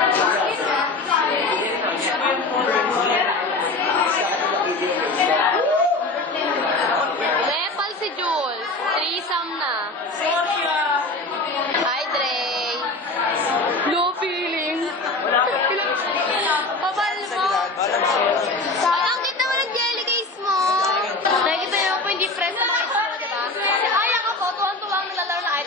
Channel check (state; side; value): quieter; right; 3.1 dB